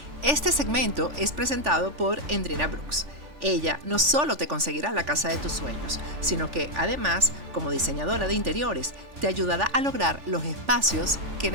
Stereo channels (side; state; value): left; late; 3.4 ms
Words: Este segmento es presentado por Endrina Brooks. Ella no solo te conseguirá la casa de tus sueños, sino que además, como diseñadora de interiores, te ayudará a lograr los espacios que